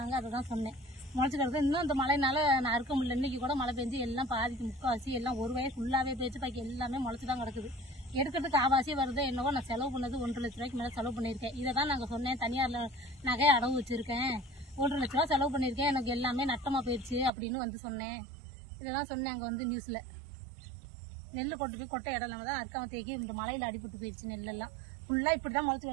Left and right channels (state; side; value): drops out; left; at 17.3 s